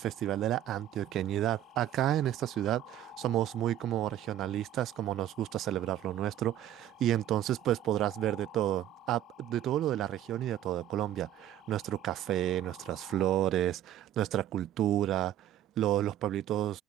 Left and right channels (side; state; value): left; quieter; 12.0 dB